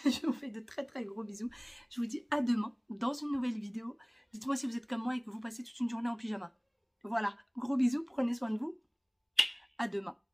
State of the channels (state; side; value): identical; both; correlation 1.00